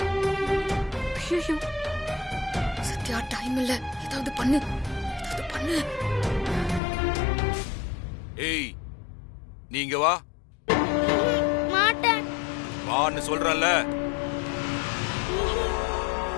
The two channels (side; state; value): right; drops out; at 6.8 s